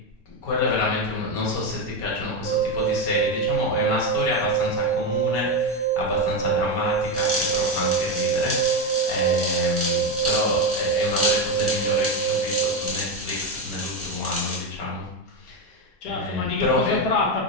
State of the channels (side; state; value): both; normal; correlation 0.11